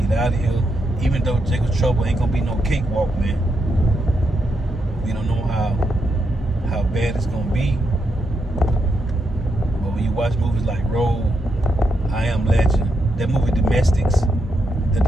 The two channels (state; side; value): normal; both; correlation 0.82